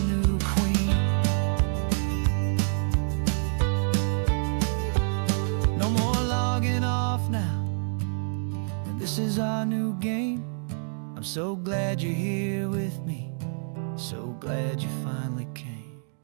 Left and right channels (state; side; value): silent; left; digital silence